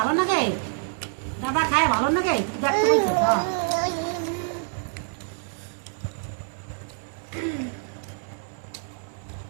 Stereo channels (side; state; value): left; silent; 61 dB below the other